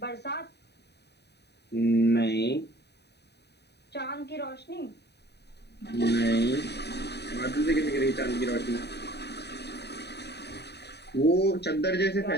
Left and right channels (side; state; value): right; late; 0.48 ms